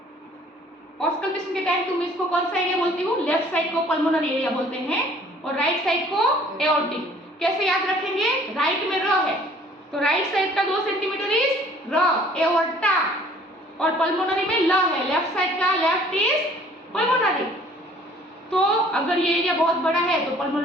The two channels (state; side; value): normal; both; correlation 0.55